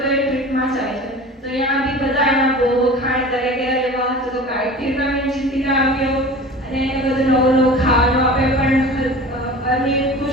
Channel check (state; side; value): normal; both; correlation 0.38